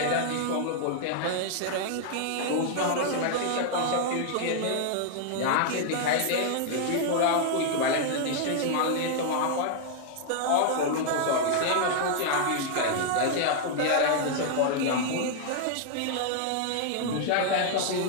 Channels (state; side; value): different; both; correlation 0.00